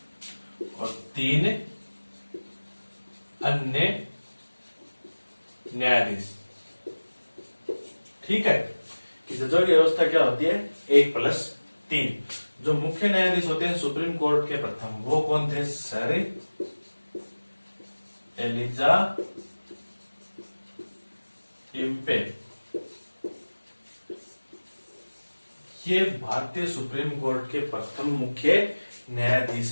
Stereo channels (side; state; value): both; inverted; correlation -1.00